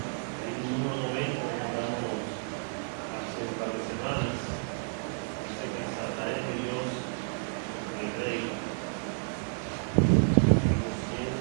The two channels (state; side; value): silent; left; 57 dB below the other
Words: el himno número 90 que cantamos hace un par de semanas. Dice que exaltaré a Dios, mi Rey. Himno